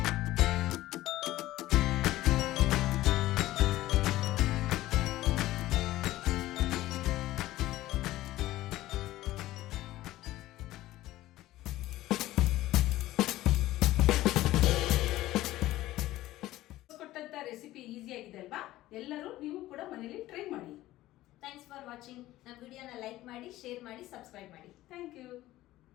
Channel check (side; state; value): right; quieter; 15.9 dB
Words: ರೆಸಿಪಿ ಈಸಿ ಆಗಿದೆ ಅಲ್ವಾ? ಎಲ್ಲರೂ ನೀವು ಕೂಡ ಮನೇಲಿ ಟ್ರೈ ಮಾಡಿ. Thanks for watching. ನಮ್ಮ ವಿಡಿಯೋನ ಲೈಕ್ ಮಾಡಿ, ಶೇರ್ ಮಾಡಿ, ಸಬ್ಸ್ಕ್ರೈಬ್ ಮಾಡಿ. Thank you.